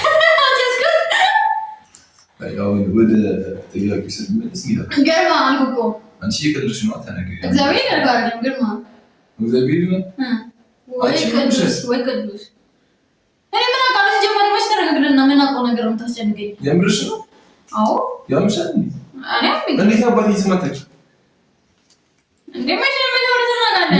አሁን ወደ ጥያቄ ስትመለስ ግርማ አልኩ እኮ አንቺ የቀለድሽ ነው። ተነገሪ እግዚአብሔር ያርጋል ግርማ እግዚአብሔር ነው ወይ ቅዱስ እኔ ምን አውቃለሁ? ጀመረ መች ተረጋግደና ምን አውቀው ነገር ነው የምታስጨንቀኝ? የምርሽ ነው? አዎ ያምሻል። እንዴት አባቴ ስም አታውቂ? እንዴ መች ነው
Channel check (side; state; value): both; identical; correlation 1.00